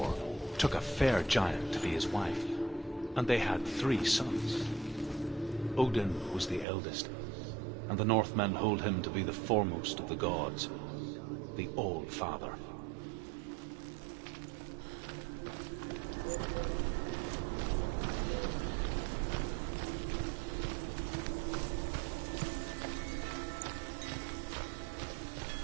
took a fair giant to be his wife, and they had 3 sons. Odin was the eldest, and the Northmen hold him to be the foremost of the gods, the All-Father.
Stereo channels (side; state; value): left; drops out; at 6.7 s